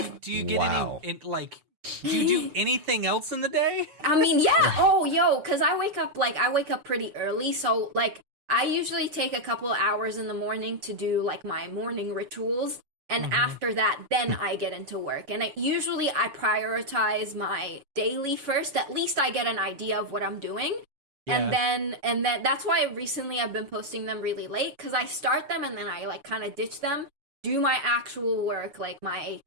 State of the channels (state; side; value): late; left; 7.0 ms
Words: get any like? Do you do anything else in the day? I mean, yeah. Oh, because I wake up pretty early, so like. I usually take a couple hours in the morning to do like my morning rituals, and after that, then I get into work. And usually I prioritize my daily first. At least I get an idea of what I'm doing, and then that's why recently I've been posting them really late, because I start them and then I like kind of ditch them, do my actual work, like my